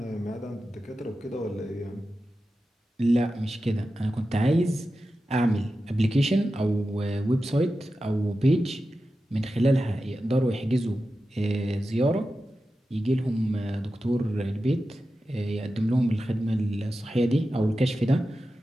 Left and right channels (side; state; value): both; normal; correlation 0.92